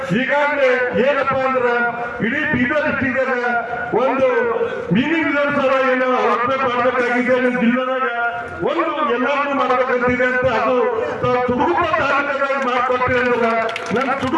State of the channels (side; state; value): both; identical; correlation 1.00